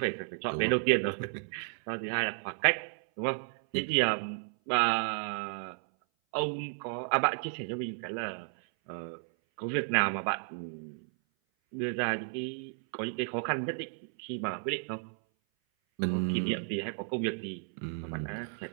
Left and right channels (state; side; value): silent; left; 56 dB below the other